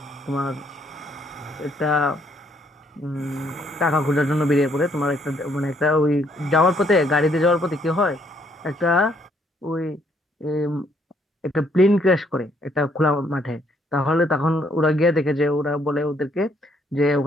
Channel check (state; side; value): normal; both; correlation 0.69